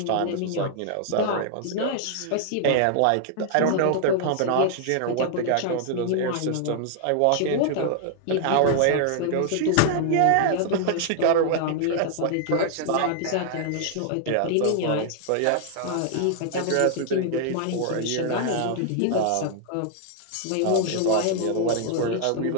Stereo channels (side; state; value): both; different; correlation -0.01